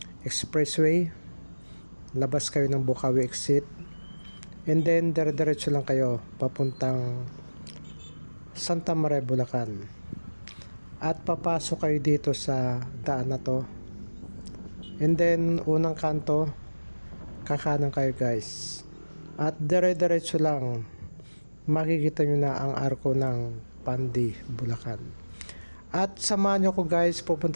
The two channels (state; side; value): inverted; both; correlation -1.00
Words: expressway, labas kayo ng Bocaue exit, and then dire-diretso lang kayo papuntang Santa Maria, Bulacan. At papasok kayo dito sa daan na to, and then unang kanto kakanan kayo guys, at dire-diretso lang makikita nyo na ang arko ng Pandi, Bulacan. At samahan nyo ko guys,